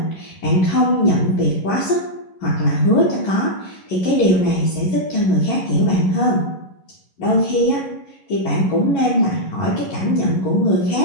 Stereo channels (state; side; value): late; right; 11 ms